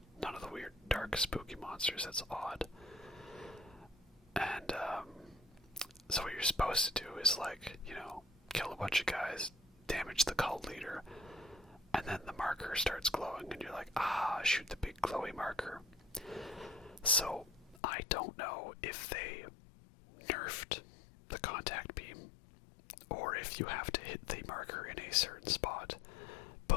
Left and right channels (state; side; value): drops out; right; at 17.8 s